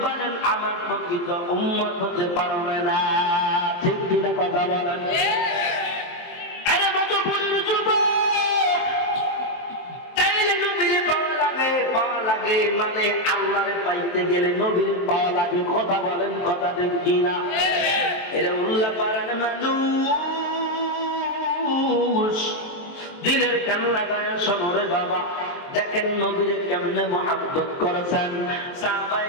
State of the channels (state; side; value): late; right; 23 ms